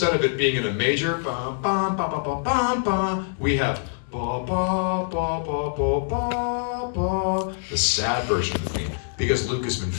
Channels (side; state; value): right; silent; 62 dB below the other